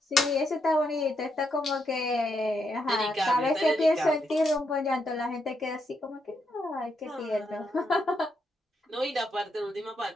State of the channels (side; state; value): both; normal; correlation 0.79